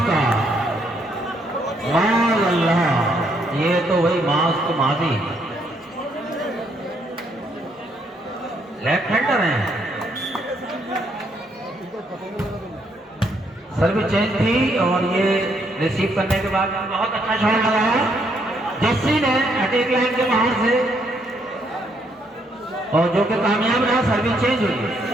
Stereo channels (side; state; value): both; normal; correlation 0.72